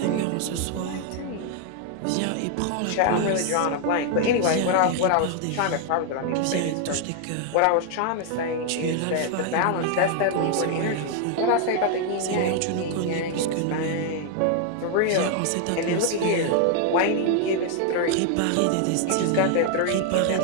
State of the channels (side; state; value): both; different; correlation 0.00